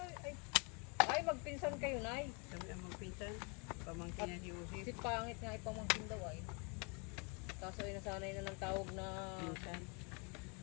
ay magpinsan kayo, Nay. Sabi ang magpinsan, pamangkin niya si Usip. Si pangit nga ipamangkin daw ay. Kaso ay nasanay na ng tawag na Pinsan.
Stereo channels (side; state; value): right; quieter; 33.7 dB